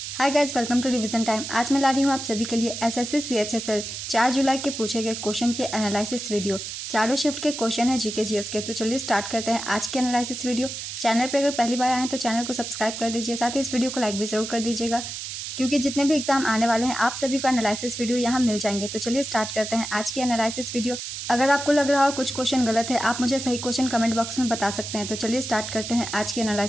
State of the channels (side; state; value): right; noise; hiss, 7 dB below the sound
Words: Hi guys, welcome to revision time. आज मैं ला रही हूँ आप सभी के लिए एसएससी सीएचएसएल 4 जुलाई के पूछे गए क्वेश्चन के एनालिसिस वीडियो। चारों शिफ्ट के क्वेश्चन है जीके जीएस के। तो चलिए स्टार्ट करते हैं आज के एनालिसिस वीडियो। चैनल पे अगर पहली बार आए हैं तो चैनल को सब्सक्राइब कर दीजिए, साथ ही इस वीडियो को लाइक भी जरूर कर दीजिएगा, क्योंकि जितने भी एग्जाम आने वाले हैं आप सभी को एनालिसिस वीडियो यहाँ मिल जाएंगे। तो चलिए स्टार्ट करते हैं आज की एनालिसिस वीडियो। अगर आपको लग रहा हो कुछ क्वेश्चन गलत है, आप मुझे सही क्वेश्चन कमेंट बॉक्स में बता सकते हैं। तो चलिए स्टार्ट करते हैं आज की